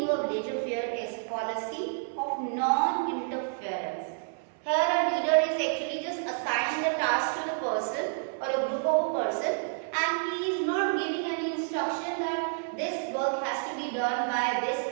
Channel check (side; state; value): left; silent; 58 dB below the other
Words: of laissez-faire is policy of non-interference. Here a leader is actually just assigning the task to the person or a group of a person, and he is not giving any instruction that this work has to be done by this